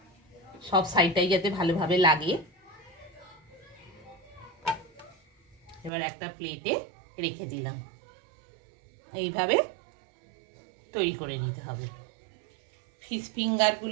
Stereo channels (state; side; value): drops out; left; at 5.9 s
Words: সব সাইডটাই যাতে ভালোভাবে লাগে। এবার একটা প্লেটে রেখে দিলাম। এইভাবে তৈরি করে নিতে হবে। ফিশ